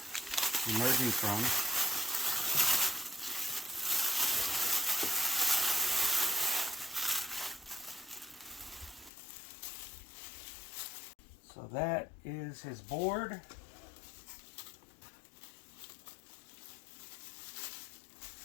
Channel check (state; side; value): drops out; right; at 9.1 s